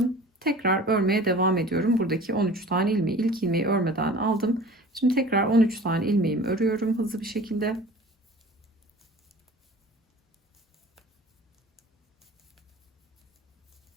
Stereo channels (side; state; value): both; normal; correlation 0.43